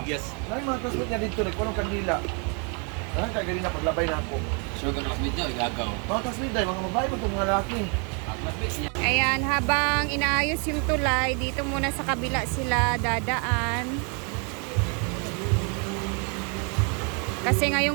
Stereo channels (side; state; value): left; quieter; 36.3 dB